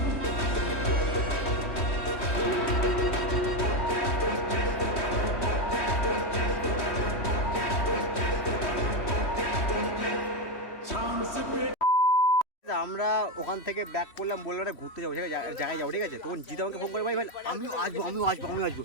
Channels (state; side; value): late; right; 3.1 ms